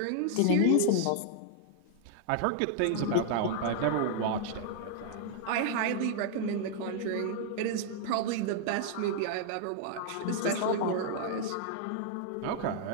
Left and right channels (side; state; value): both; different; correlation 0.00